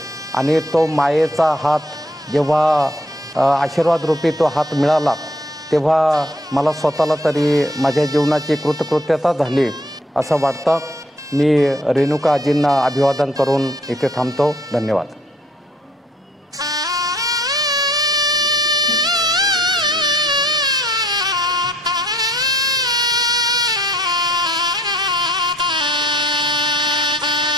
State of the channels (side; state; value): both; normal; correlation 0.63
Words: आणि तो मायेचा हात जेव्हा आशीर्वाद रूपी तो हात मिळाला तेव्हा मला स्वतःला तरी माझ्या जीवनाची कृतकृत्यता झाली असं वाटतं। मी रेणुका आजींना अभिवादन करून इथे थांबतो। धन्यवाद।